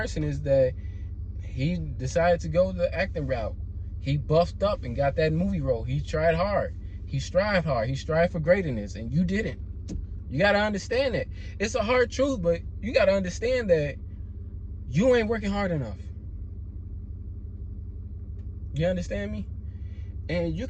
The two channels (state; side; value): identical; both; correlation 1.00